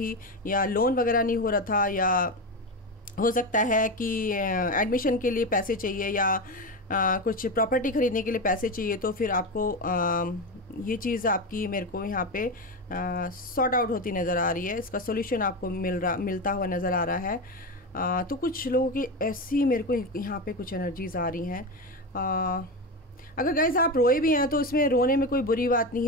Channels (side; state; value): both; normal; correlation 0.17